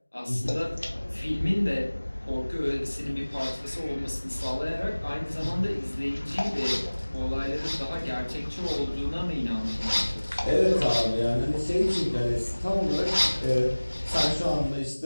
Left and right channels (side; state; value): both; inverted; correlation -1.00